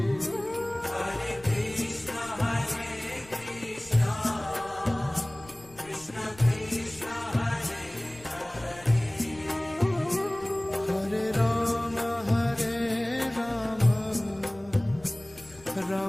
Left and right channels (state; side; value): noise; left; rumble, 23 dB below the sound